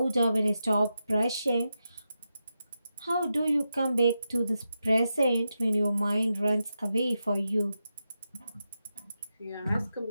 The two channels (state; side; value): inverted; both; correlation -0.88